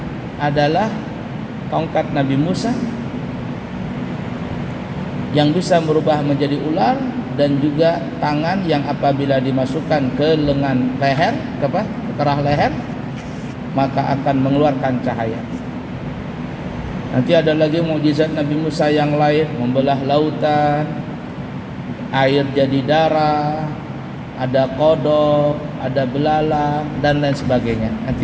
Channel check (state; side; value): identical; both; correlation 1.00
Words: adalah tongkat Nabi Musa yang bisa merubah menjadi ular, dan juga tangan yang apabila dimasukkan ke lengan leher, ke kerah leher, maka akan mengeluarkan cahaya. Nanti ada lagi mukjizat Nabi Musa yang lain, membelah lautan, air jadi darah, ada kodok, ada belalang, dan lain sebagainya.